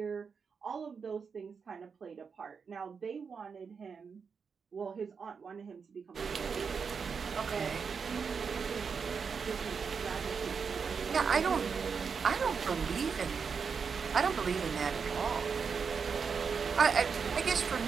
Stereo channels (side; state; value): left; quieter; 5.8 dB